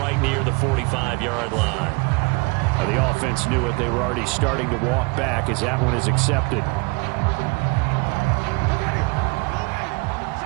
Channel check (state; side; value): quieter; left; 29.2 dB